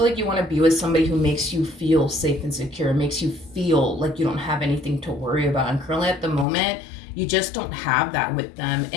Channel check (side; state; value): right; drops out; at 6.5 s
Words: like you want to be with somebody who makes you feel safe and secure, makes you feel like you don't have anything to worry about. And currently at the moment, you just don't have that with them.